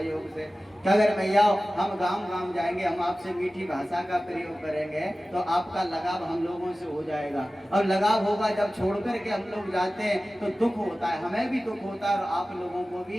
से। कि अगर मैया हम गांव गांव जाएंगे, हम आपसे मीठी भाषा का प्रयोग करेंगे, तो आपका लगाव हम लोगों से हो जाएगा। और लगाव होगा, जब छोड़ करके हम लोग जाते हैं तो दुख होता है, हमें भी दुख होता है और आप लोगों को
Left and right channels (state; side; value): normal; both; correlation 0.96